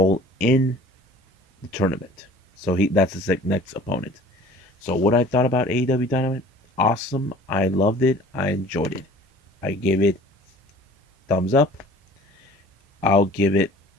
in the tournament. So that's his next opponent. So what I thought about AEW Dynamite, awesome. I loved it. I enjoyed it. I gave it thumbs up. I'll give it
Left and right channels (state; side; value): normal; both; correlation 0.47